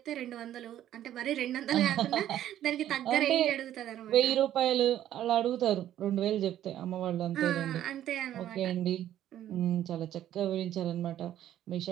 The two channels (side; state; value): left; quieter; 11.9 dB